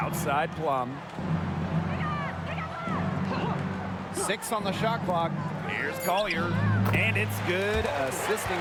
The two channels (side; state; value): both; identical; correlation 1.00